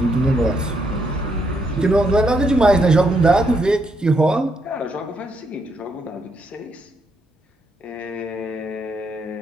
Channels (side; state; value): both; normal; correlation 0.76